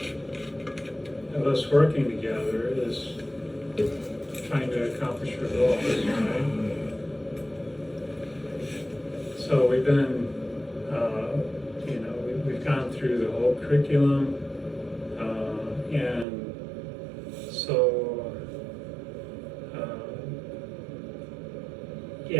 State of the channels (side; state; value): left; drops out; at 16.2 s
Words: of us working together is trying to accomplish your goals, right? So we've been, we've gone through the whole curriculum, and so,